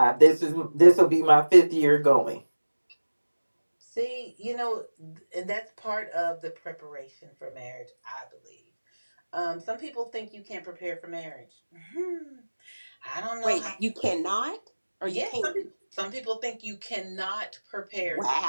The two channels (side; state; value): both; inverted; correlation -1.00